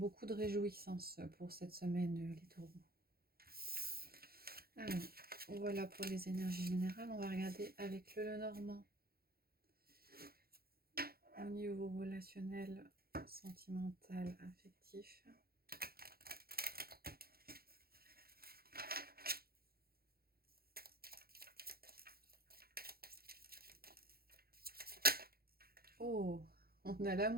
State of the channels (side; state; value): left; late; 0.44 ms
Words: de réjouissance pour cette semaine, les taureaux. Alors, voilà pour les énergies générales. On va regarder avec le Lenormand. Au niveau relationnel, sentimental, affectif. Oh, on a